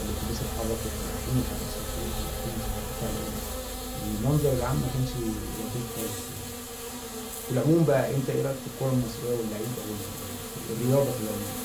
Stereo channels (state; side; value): identical; both; correlation 1.00